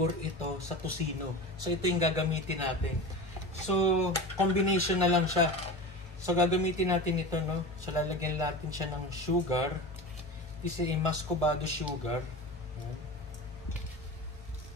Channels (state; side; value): normal; both; correlation 0.30